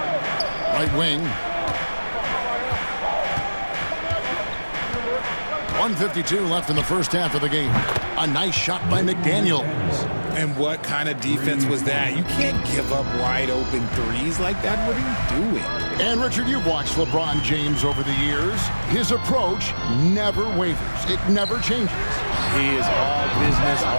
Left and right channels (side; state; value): both; inverted; correlation -1.00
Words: Right wing. 1:52 left in the first half of the game. A nice shot by McDaniels. And what kind of defense was that? You can't give up wide open threes like that. What are you doing? And Richard, you've watched LeBron James over the years. His approach never wavers. It never changes. He is all business